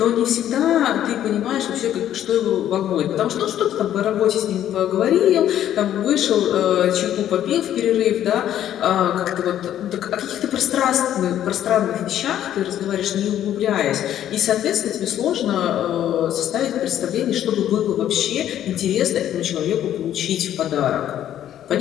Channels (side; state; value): right; quieter; 11.3 dB